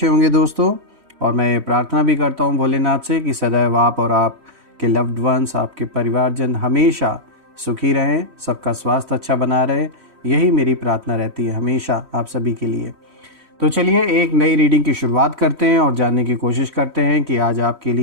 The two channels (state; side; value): late; left; 3.1 ms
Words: होंगे दोस्तों। और मैं प्रार्थना भी करता हूं भोलेनाथ से कि सदैव आप और आपके लव्ड वंस, आपके परिवारजन हमेशा सुखी रहें, सबका स्वास्थ्य अच्छा बना रहे। यही मेरी प्रार्थना रहती है हमेशा आप सभी के लिए। तो चलिए एक नई रीडिंग की शुरुआत करते हैं और जानने की कोशिश करते हैं कि आज आपके